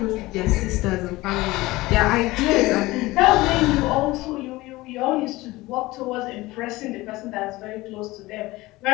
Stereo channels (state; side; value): quieter; right; 19.7 dB